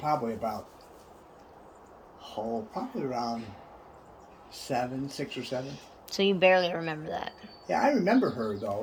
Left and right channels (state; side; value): identical; both; correlation 1.00